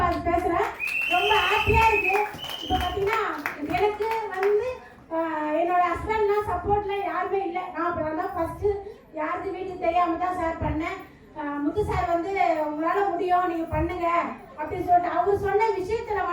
பேசுறேன். ரொம்ப ஹாப்பியா இருக்கு. இப்போ பார்த்தீங்கன்னா எனக்கு வந்து என்னோட ஹஸ்பண்ட்லாம் சப்போர்ட்ல யாருமே இல்லை. நான் இப்போ தான் ஃபர்ஸ்ட் யாருக்கு வீட்டுக்கு தெரியாம தான் சார் பண்ணேன். முத்து சார் வந்து உங்களால முடியும், நீங்க பண்ணுங்க அப்படின்னு சொல்லிட்டு அவர் சொன்ன விஷயத்துல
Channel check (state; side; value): identical; both; correlation 1.00